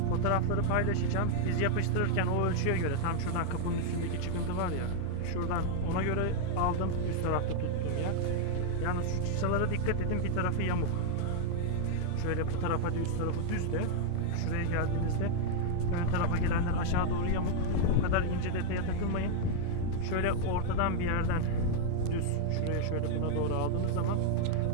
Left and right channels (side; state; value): both; different; correlation 0.00